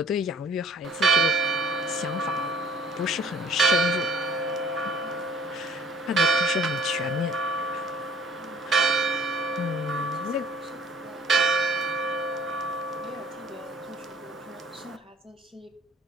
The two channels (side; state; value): both; normal; correlation 0.53